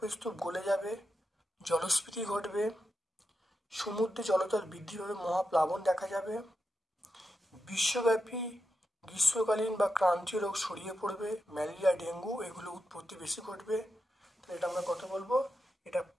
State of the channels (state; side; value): normal; both; correlation 0.88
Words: স্তূপ গলে যাবে, জলস্ফীতি ঘটবে, সমুদ্রে জলতল বৃদ্ধি পাবে, মহাপ্লাবন দেখা যাবে, বিশ্বব্যাপী গ্রীষ্মকালীন বা ক্রান্তীয় রোগ ছড়িয়ে পড়বে, ম্যালেরিয়া, ডেঙ্গু এগুলো উৎপত্তি বেশি ঘটবে। তাহলে এটা আমরা কত বলবো? এটা